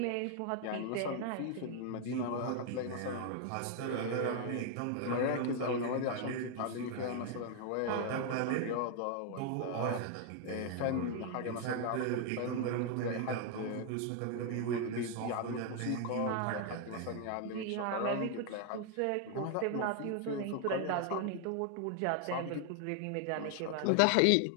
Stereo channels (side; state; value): both; different; correlation 0.00